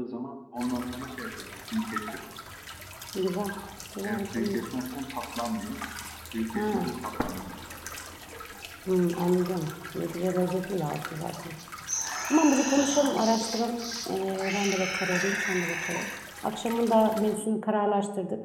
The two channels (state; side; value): identical; both; correlation 1.00